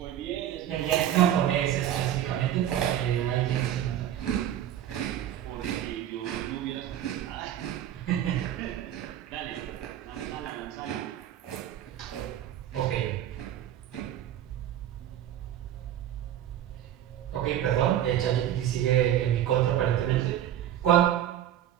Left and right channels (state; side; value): quieter; left; 11.3 dB